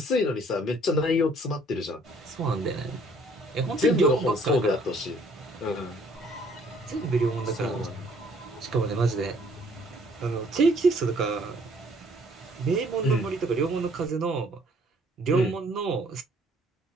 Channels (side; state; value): both; normal; correlation 0.61